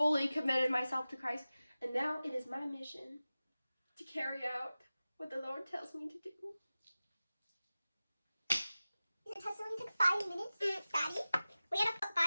committed myself to Christ, and now it is my mission to carry out what the Lord tells me to do. Your testimony took 5 minutes, Daddy. We had to put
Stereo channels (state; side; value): inverted; both; correlation -0.96